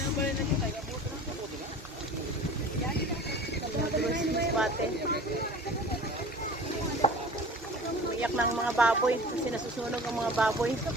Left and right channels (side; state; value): both; normal; correlation 0.41